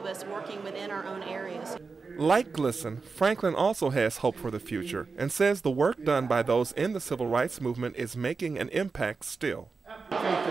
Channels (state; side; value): quieter; left; 4.6 dB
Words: us working within our own areas. Like Glisson, Franklin also has hope for the future and says the work done by those in the civil rights movement is making an impact still. I think